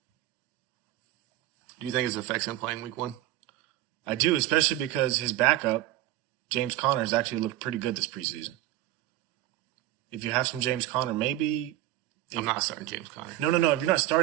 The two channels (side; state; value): left; quieter; 15.2 dB